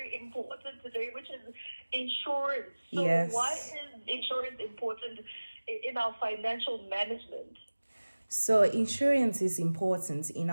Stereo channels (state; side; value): inverted; both; correlation -1.00